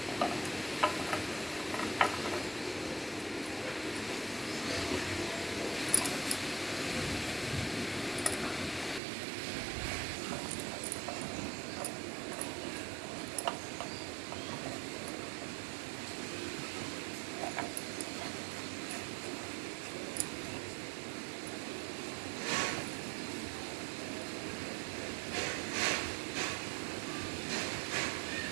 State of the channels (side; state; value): left; drops out; at 9.0 s